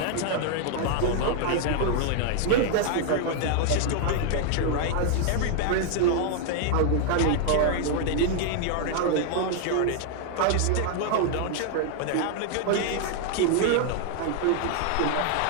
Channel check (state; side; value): different; both; correlation 0.00